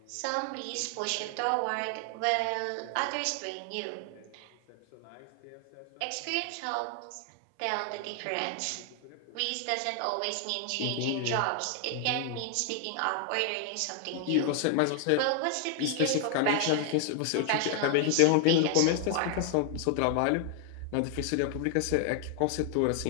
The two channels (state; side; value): different; both; correlation 0.00